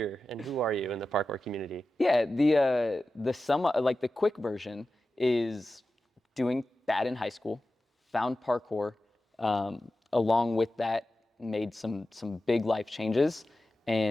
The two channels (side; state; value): both; normal; correlation 0.93